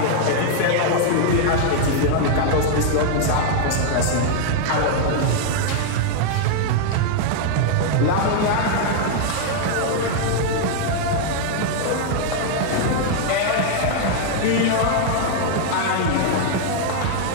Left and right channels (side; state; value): both; different; correlation 0.00